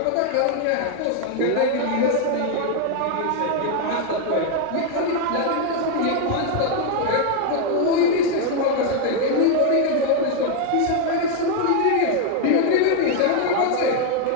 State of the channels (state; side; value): different; both; correlation 0.01